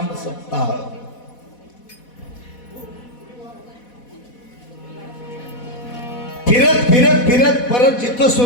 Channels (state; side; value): late; right; 4.1 ms